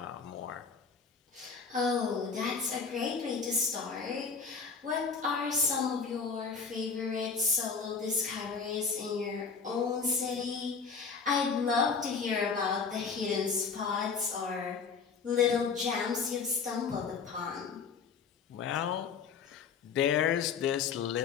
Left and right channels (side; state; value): right; quieter; 5.6 dB